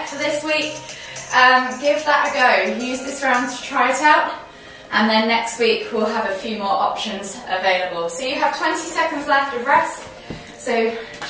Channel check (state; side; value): identical; both; correlation 1.00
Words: for this week. Give that a go. Use this round to try it out. And then next week we'll have a few more options available. So you have 20 seconds left of rest. So